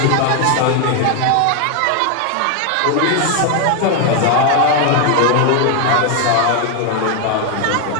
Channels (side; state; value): both; different; correlation 0.00